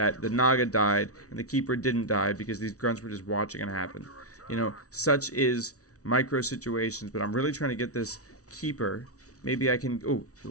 the Naga died and the Keeper didn't die because these grunts were just watching it happen. You know, such is micro situations, but I'm really trying to get this Keeper. Maybe I can... Oh,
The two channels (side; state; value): right; late; 0.66 ms